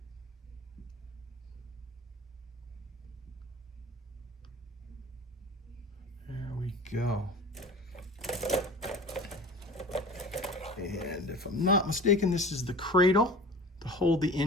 There we go. And if I'm not mistaken, this is the cradle to hold the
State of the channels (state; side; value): normal; both; correlation 0.39